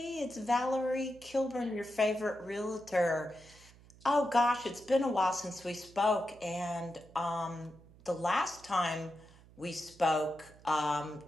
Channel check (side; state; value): right; noise; hum, 24 dB below the sound